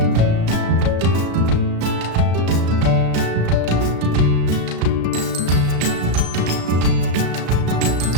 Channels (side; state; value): left; late; 35 ms